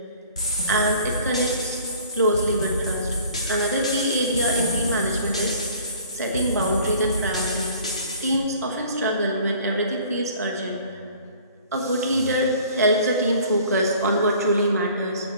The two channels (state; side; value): inverted; both; correlation -0.51